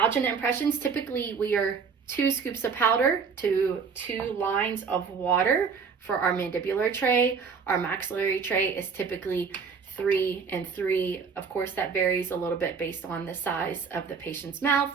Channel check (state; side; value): quieter; left; 5.8 dB